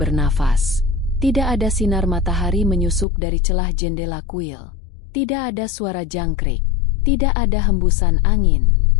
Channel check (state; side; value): drops out; right; at 3.1 s